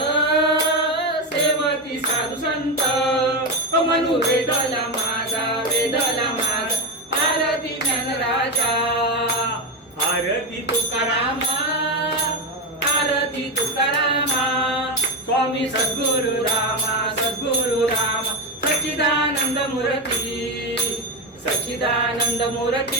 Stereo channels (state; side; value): normal; both; correlation 0.12